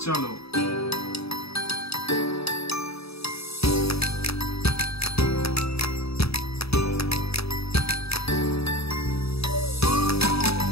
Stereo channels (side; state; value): right; late; 0.77 ms